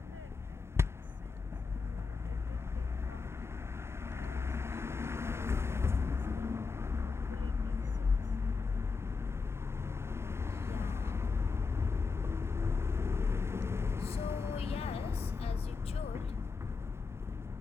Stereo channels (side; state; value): right; quieter; 4.7 dB